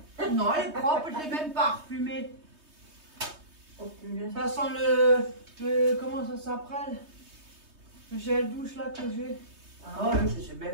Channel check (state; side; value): late; left; 3.2 ms